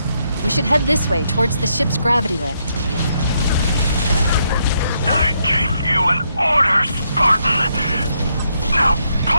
We should head this way towards the ship's gravity lift. I gave you an order, Spartan. Now pull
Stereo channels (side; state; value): both; inverted; correlation -0.77